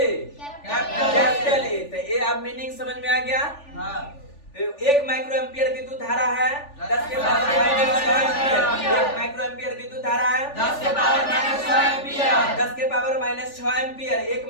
Capital A. ए। तो ये अब मीनिंग समझ में आ गया। हाँ। एक माइक्रो एम्पियर विद्युत धारा है 10 के पावर -6 एम्पियर। एक माइक्रो एम्पियर विद्युत धारा है 10 के पावर -6 एम्पियर। 10 के पावर -6 एम्पियर। एक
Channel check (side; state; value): right; late; 3.4 ms